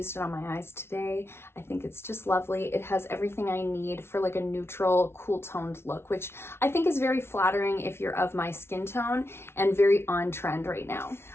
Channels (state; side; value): late; right; 0.12 ms